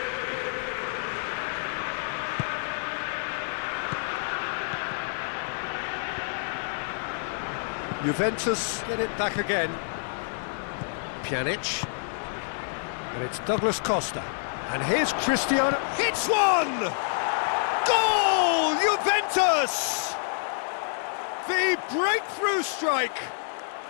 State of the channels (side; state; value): right; silent; digital silence